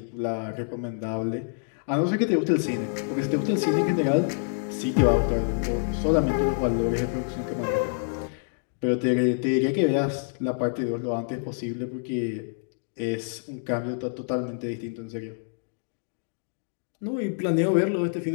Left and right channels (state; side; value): silent; right; digital silence